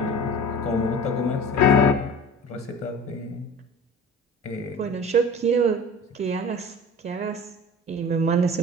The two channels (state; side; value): normal; both; correlation 0.38